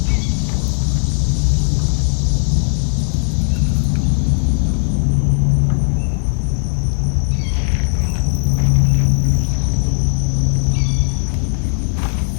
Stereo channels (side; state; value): right; silent; digital silence